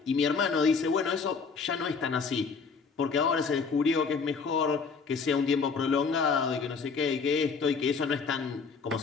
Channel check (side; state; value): right; quieter; 5.2 dB